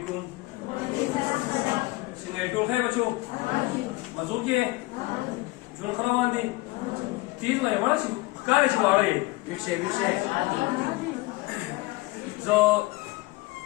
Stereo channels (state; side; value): quieter; right; 21.3 dB